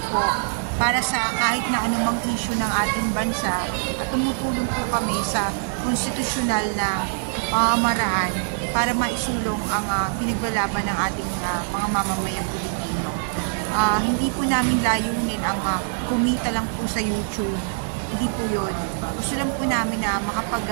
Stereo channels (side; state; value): left; silent; digital silence